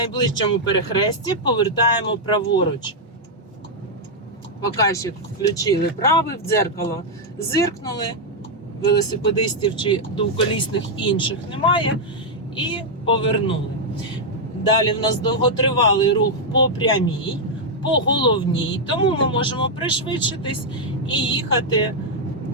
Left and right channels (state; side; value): normal; both; correlation -0.02